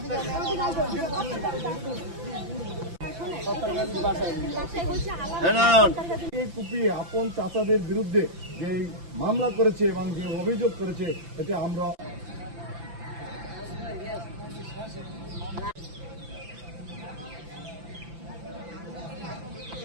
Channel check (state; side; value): late; left; 5.9 ms